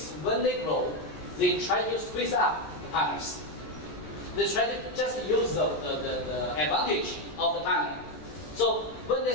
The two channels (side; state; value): right; late; 14 ms